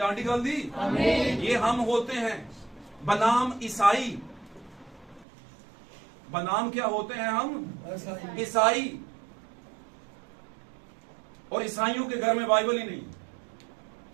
आंटी गल दी? ये हम होते हैं बनाम ईसाई। बनाम क्या होते हैं हम? ईसाई। और ईसाइयों के घर में बाइबल ही नहीं।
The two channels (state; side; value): drops out; left; at 5.2 s